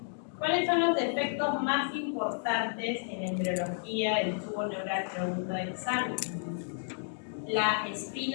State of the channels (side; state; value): right; silent; digital silence